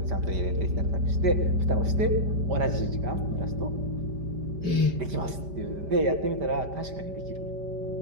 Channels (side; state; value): left; late; 5.1 ms